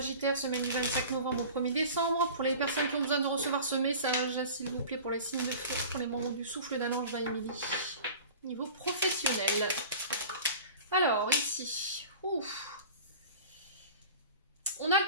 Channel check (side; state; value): both; inverted; correlation -0.39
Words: semaine du 25 novembre au 1er décembre. Pour les personnes qui ont besoin de recevoir ce message, s'il vous plaît, pour les signes de feu, pour les membres du souffle d'un ange Émilie. Niveau professionnel. Alors, ici, ouf. On a